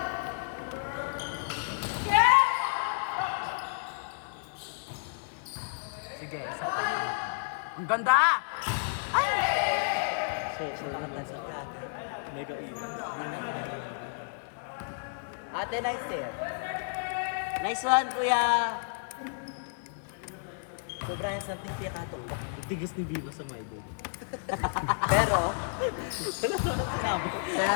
Sige, isa pa. Ang ganda! Ay! So naman sa mega event. Ate, nice eh. Nice one, Kuya! Sobrang something kaya katulog. Tigas ni Viva sa my day. Pero, Wala na sinabi.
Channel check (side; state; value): right; silent; digital silence